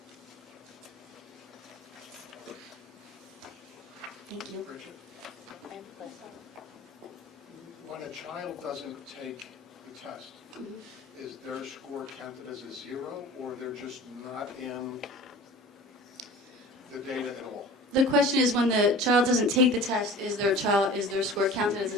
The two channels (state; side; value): normal; both; correlation 0.41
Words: Thank you. Richard, when a child doesn't take the test, is their score counted as a 0, or they're just not in the data at all? The question is, when the child doesn't take the test, is their score counted as